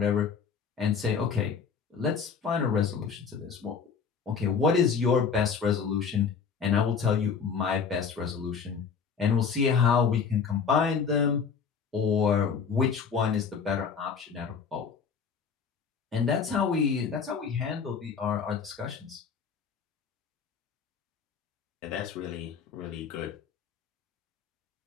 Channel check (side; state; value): right; quieter; 6.2 dB